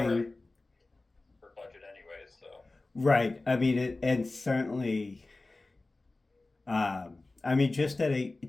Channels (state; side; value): quieter; right; 3.2 dB